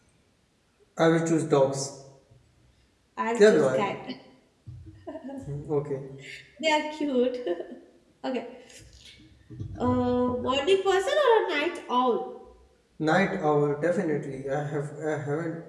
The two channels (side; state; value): both; identical; correlation 1.00